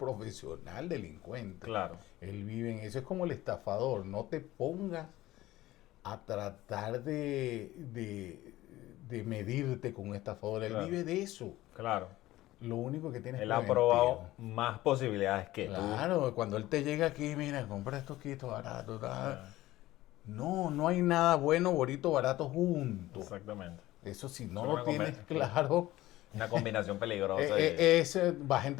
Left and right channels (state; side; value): quieter; right; 16.6 dB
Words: delincuente. Claro. Él vive en eso. Es como el estafador. No te pongas a tratar de medirte con un estafador. Él Claro. vive de eso. Claro. Lo único que tiene es Él ha preventivo. probado más posibilidades que tú. Claro, cuando él te llega aquí, mira, compra estos quitos baratos. Ah, No, no hay nada bueno, bonito, barato junto. exactamente. Eso si no Es lo una tienes combi- claro, Una combinación peligrosa. ese vas a